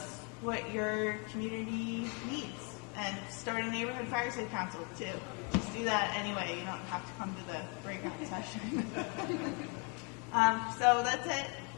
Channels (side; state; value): right; quieter; 34.3 dB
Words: what your community needs. And start a neighborhood fire safe council too. Just do that anyway. You don't have to come to the breakout session. So that's it.